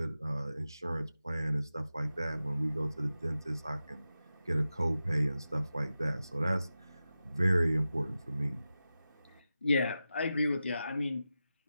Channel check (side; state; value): both; inverted; correlation -0.92